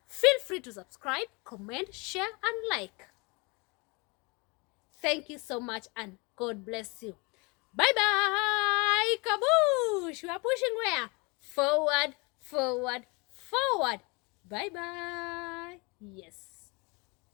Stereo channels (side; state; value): right; quieter; 28.6 dB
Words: Feel free to subscribe, comment, share, and like. Thank you so much, and God bless you. Bye-bye! Kaboosh! We are pushing where? Forward, forward, forward. Bye-bye. Yes.